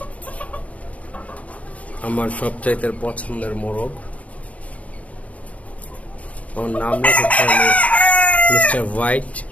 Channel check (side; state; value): right; late; 0.066 ms